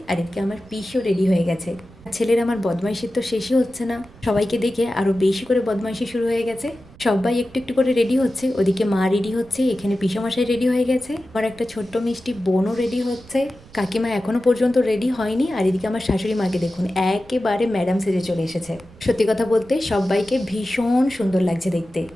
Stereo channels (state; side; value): noise; right; rumble, 23 dB below the sound